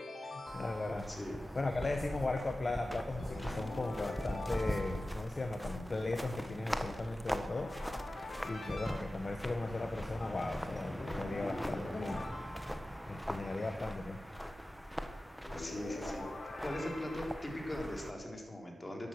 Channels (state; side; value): normal; both; correlation 0.95